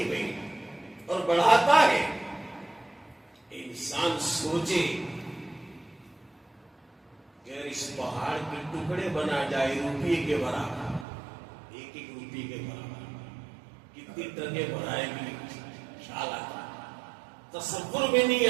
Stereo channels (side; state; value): left; drops out; at 11.1 s